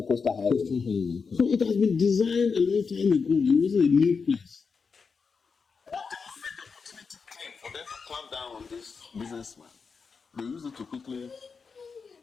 coastal highway. Coastal highway, okay. So it has been designed a long time ago. It wasn't a new place. But the moment the opportunity came for them to clamp down on this businessman, they used it to quickly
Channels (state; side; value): quieter; right; 5.3 dB